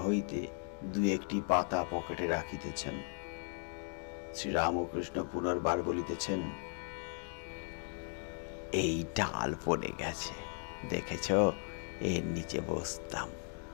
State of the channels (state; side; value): silent; right; 53 dB below the other